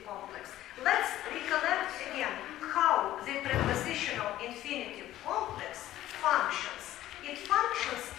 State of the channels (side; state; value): right; quieter; 14.1 dB